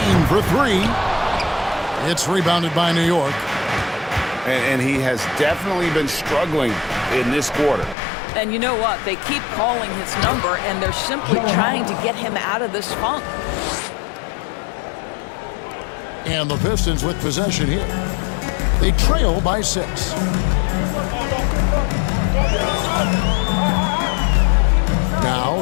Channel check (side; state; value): right; drops out; at 8.0 s